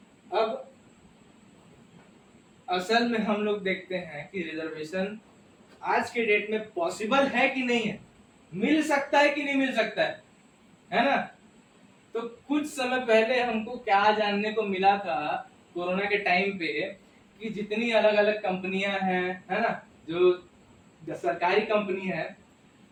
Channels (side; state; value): both; identical; correlation 1.00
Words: अब असल में हम लोग देखते हैं कि रिजर्वेशन आज के डेट में पॉसिबल है कि नहीं है, मिल सकता है कि नहीं मिल सकता है ना। तो कुछ समय पहले हमको क्या जानने को मिला था कोरोना के टाइम पे कि जितनी अलग अलग कंपनियां हैं, है ना, जो सरकारी कंपनी है